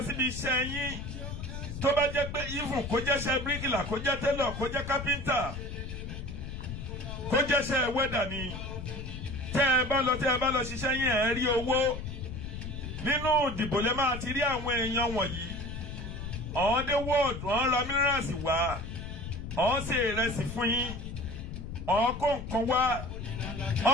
síbi iṣẹ́ yín tó bá jẹ́ pé even kó jẹ́ṣẹ́ bíríkìlà kó jẹ́ télọ̀ kó jẹ́ kápẹ́ńtà kó jẹ́ṣẹ́ wẹ́dà ni tẹ́ ẹ bá lọ ṣiṣẹ́ yín ẹ rí owó. Nínú ìdìbò lè máa ti rí àwọn èèyàn wọ̀nyí. Ọ̀hún dé wọ́ọ̀dù ọ̀hún ra mínírààsì wá ọ̀hún ṣe ìrẹsì fún yín ọ̀hún kó nǹkan wá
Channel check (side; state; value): left; noise; rumble, 8 dB below the sound